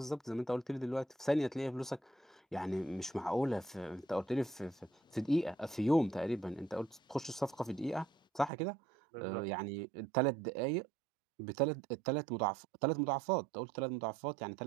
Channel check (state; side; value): drops out; left; at 8.5 s